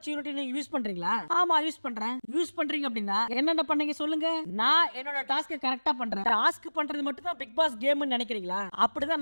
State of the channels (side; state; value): both; inverted; correlation -1.00